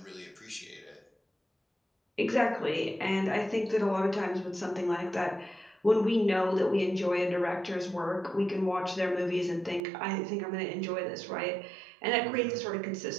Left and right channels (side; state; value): left; drops out; at 9.8 s